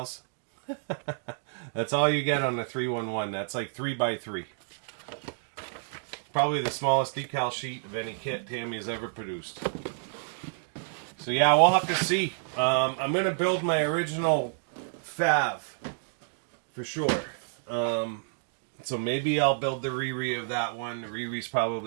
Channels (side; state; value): left; silent; digital silence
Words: That's all you get on the 311. That's like 3x3. Probably the smallest decal sheet of any kit Tamiya's ever produced. So yeah, we'll have to see. I'm gonna build my original Fav for sure. So maybe I'll build the Riri of that one. The Riri's